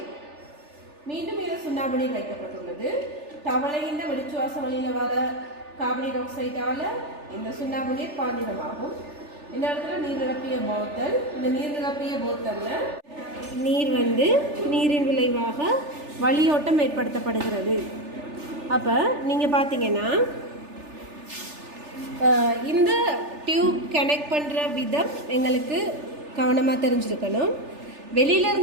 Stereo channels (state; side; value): late; left; 3.4 ms